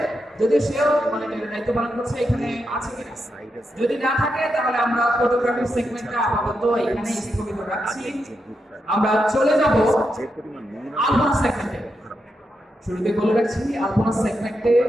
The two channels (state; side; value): normal; both; correlation 0.85